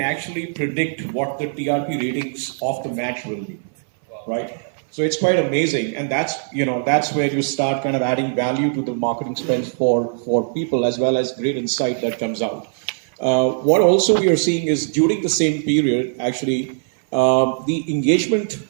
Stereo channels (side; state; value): left; silent; 61 dB below the other